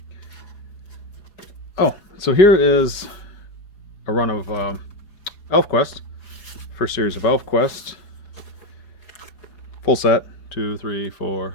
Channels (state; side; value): late; right; 4.8 ms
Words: Oh, so here is a run of ElfQuest. First series of ElfQuest. Full set. 2, 3, 4,